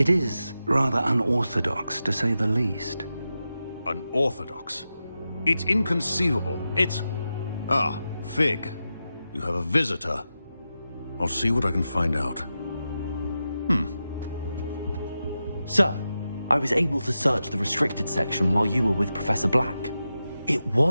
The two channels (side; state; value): both; inverted; correlation -0.91